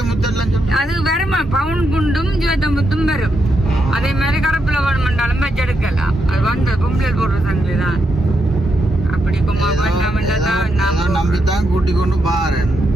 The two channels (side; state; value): both; normal; correlation 0.82